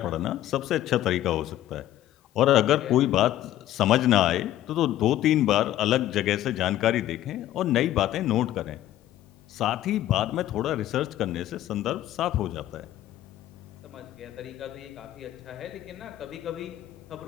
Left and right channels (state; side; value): quieter; right; 13.3 dB